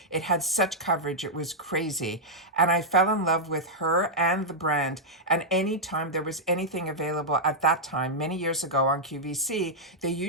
It had such coverage, it was crazy. And I fell in love with her and the brand. And anytime there was anything available at that time, many years ago on QVC, they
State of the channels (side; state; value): both; normal; correlation -0.06